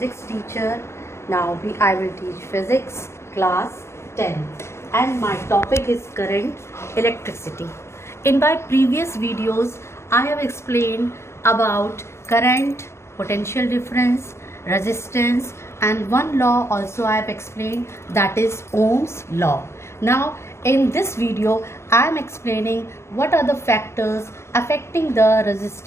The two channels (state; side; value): late; right; 0.13 ms